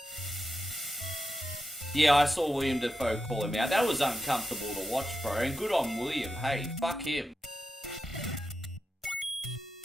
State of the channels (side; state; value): both; normal; correlation 0.88